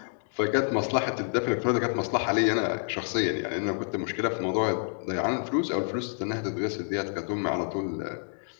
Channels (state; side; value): silent; right; 56 dB below the other